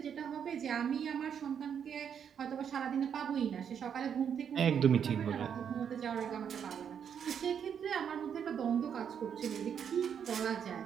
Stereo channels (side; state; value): left; quieter; 7.9 dB